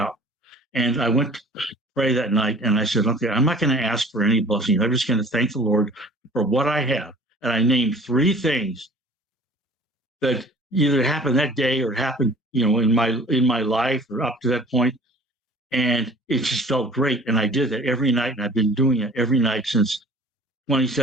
And I went to pray that night, and I said, okay, I'm not going to ask for any blessings. I'm just going to thank the Lord for what I have. And I named 3 things that either happened that day or happened, in my life or up to that point. And it just felt great. And I did that every night, and I've been doing it every night since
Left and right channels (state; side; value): normal; both; correlation 0.48